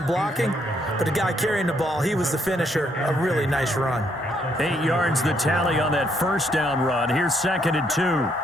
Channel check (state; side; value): normal; both; correlation 0.72